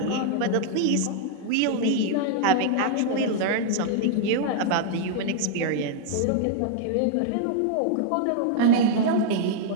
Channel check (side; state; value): both; different; correlation 0.00